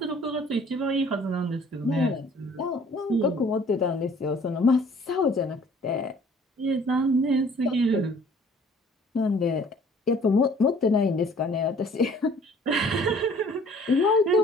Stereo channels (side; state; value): both; normal; correlation 0.54